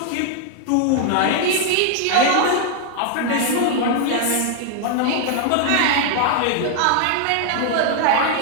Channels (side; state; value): both; different; correlation 0.00